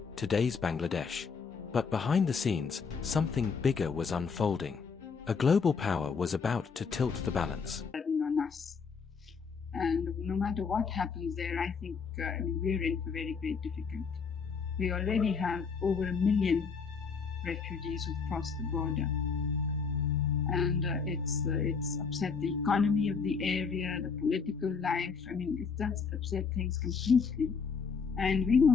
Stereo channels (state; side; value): quieter; right; 5.5 dB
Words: today's Bangladesh. But behind the scenes, something bigger was unfolding. A global power was about to tilt the balance. On us. And no matter what happens there, I think we're in for very great difficulty. We already have over 1 million refugees who've crossed the border. And it's upset the economy of the area, the political life. It does upset things completely. And we